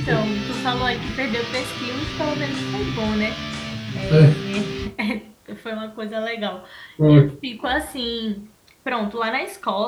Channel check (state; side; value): identical; both; correlation 1.00